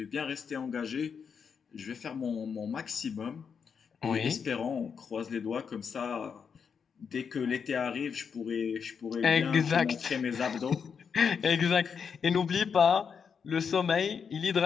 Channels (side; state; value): right; quieter; 6.5 dB